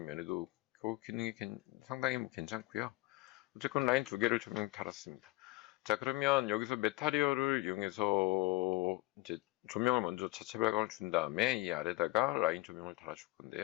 면에도 그 기능이 상당히 괜찮고요. 어쨌건 라인 두 개를 조명 달았습니다. 자, 그러면 여기서 메타리얼을 이용해서 이제 조명을 먼저 자체 발광을 준 다음에 이 아래다가 라인 조명을 달아줄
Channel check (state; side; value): quieter; right; 21.0 dB